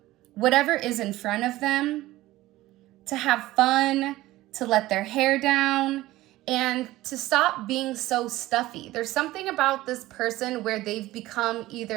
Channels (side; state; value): left; quieter; 17.0 dB